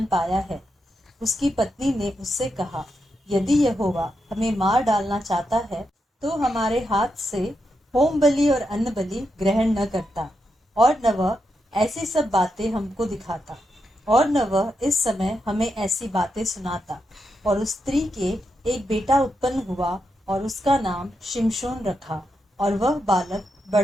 पाया है। उसकी पत्नी ने उससे कहा, यदि यहोवा हमें मार डालना चाहता है तो हमारे हाथ से होम बलि और अन्न बलि ग्रहण न करता, और न वह ऐसी सब बातें हमको दिखाता। और न वह इस समय हमें ऐसी बातें सुनाता। और उस स्त्री के एक बेटा उत्पन्न हुआ और उसका नाम शिमशोन रखा। और वह बालक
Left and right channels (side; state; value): both; normal; correlation 0.85